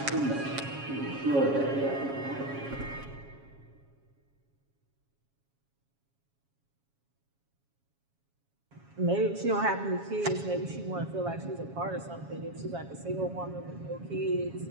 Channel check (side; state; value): left; late; 7.3 ms